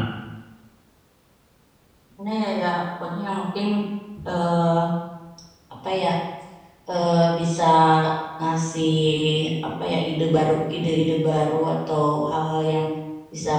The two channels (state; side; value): identical; both; correlation 1.00